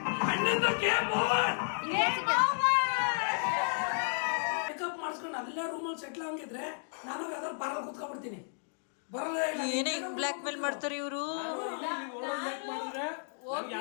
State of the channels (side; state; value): right; silent; digital silence